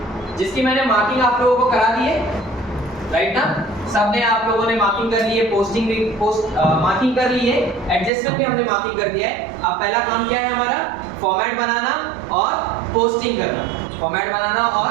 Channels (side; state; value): left; drops out; at 8.1 s